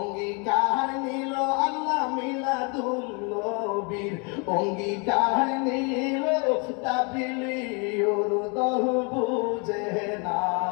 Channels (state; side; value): quieter; right; 33.5 dB